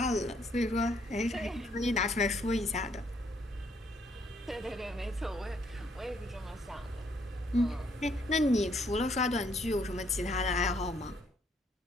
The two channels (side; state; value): both; normal; correlation 0.69